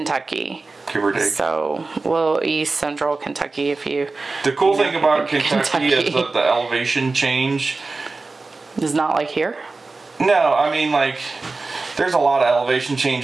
Give or take. So, East Central Kentucky, if you... The cool thing about Kentucky is that the elevation change... is not like here? No, I mean, like, there's a lot of elevation change,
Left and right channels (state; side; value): quieter; left; 3.7 dB